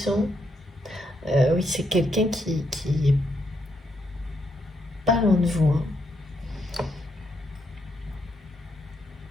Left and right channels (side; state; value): both; normal; correlation 0.78